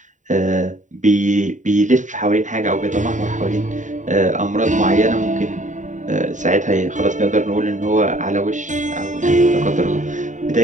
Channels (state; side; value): late; left; 0.36 ms